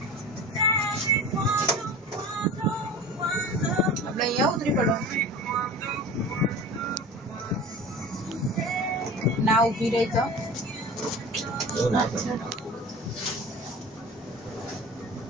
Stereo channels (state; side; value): normal; both; correlation 0.36